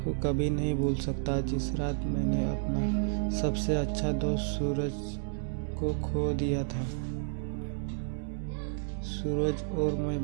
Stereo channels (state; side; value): silent; left; digital silence